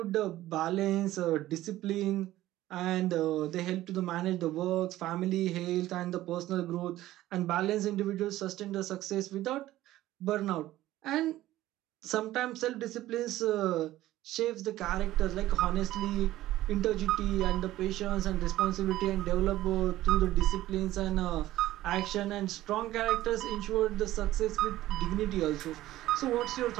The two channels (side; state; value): left; quieter; 15.2 dB